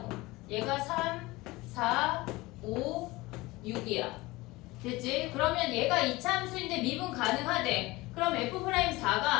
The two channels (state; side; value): quieter; right; 21.0 dB